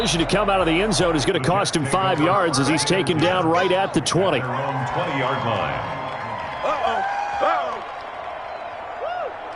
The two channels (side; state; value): both; identical; correlation 1.00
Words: to come out of the end zone is going to cost him 5 yards as he's taken down right at the 20. 20-yard line.